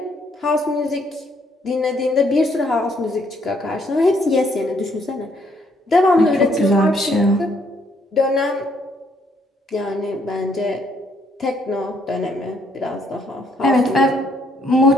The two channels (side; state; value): both; normal; correlation 0.69